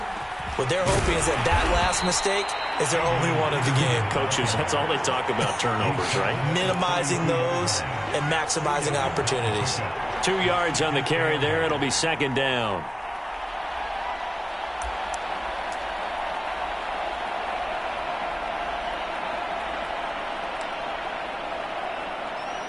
What they're hoping is that last mistake is their only one of the game. Coaches, that's all they talk about, turnovers, right? Minimizing those and maximizing opportunities. 2 yards on the carry there. It'll be 2nd down.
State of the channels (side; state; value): both; identical; correlation 1.00